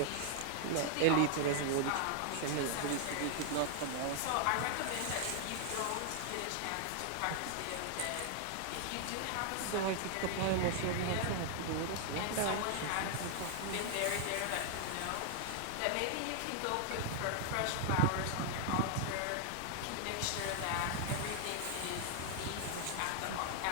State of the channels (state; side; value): different; both; correlation 0.00